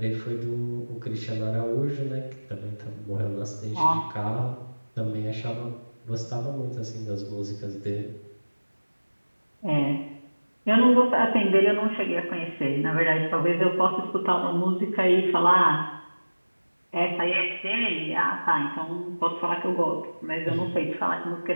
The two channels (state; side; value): inverted; both; correlation -1.00